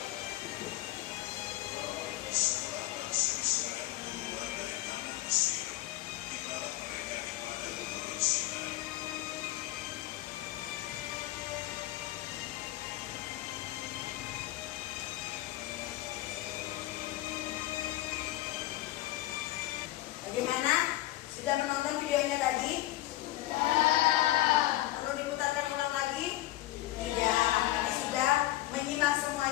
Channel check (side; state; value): right; quieter; 16.2 dB